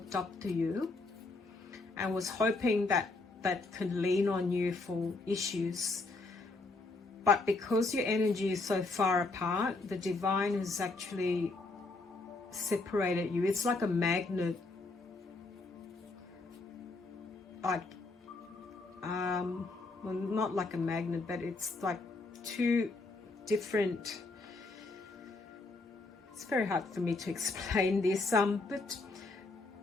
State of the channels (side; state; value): right; quieter; 3.4 dB